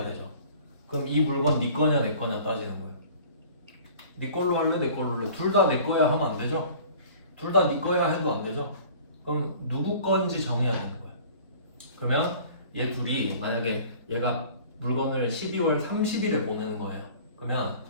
되죠. 그럼 이 물건 네 거냐 내 거냐 따지는 거예요. 네 걸로 할래 내 걸로 할래? 둘 다 내 거야 하면 안 되죠. 둘 다 네 거야 해도 안 되죠. 그럼 누구 건지 정해야 되는 거예요. 그러면 얘 둘이 만약에 얘가 물건을 12월 30일에 보내는 거예요. 그러면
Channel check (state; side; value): inverted; both; correlation -0.47